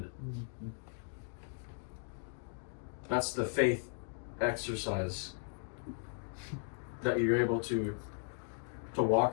it. That's the faith exercise that you're able to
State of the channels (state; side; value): silent; right; digital silence